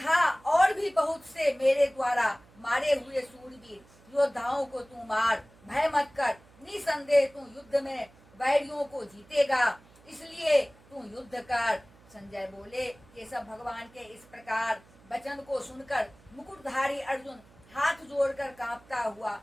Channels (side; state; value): right; noise; hum, 27 dB below the sound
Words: और भी बहुत से मेरे द्वारा मारे हुए सूरवीर योद्धाओं को तू मार, भय मत कर। निसंदेह तू युद्ध में वैरियों को जीतेगा, इसलिए तू युद्ध कर। संजय बोले, केशव भगवान के इस प्रकार वचन को सुनकर मुकुटधारी अर्जुन हाथ जोड़कर कांपता हुआ